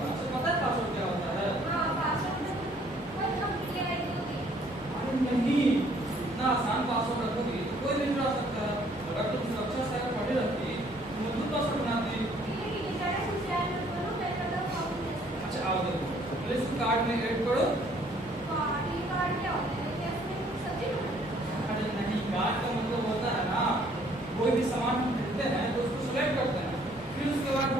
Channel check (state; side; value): normal; both; correlation 0.61